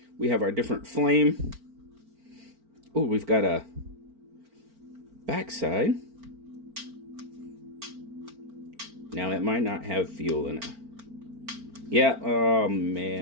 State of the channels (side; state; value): left; late; 4.4 ms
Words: We have our different flame. Oh, we've got a backside. Now, it might not have fuel in it. Yeah, oh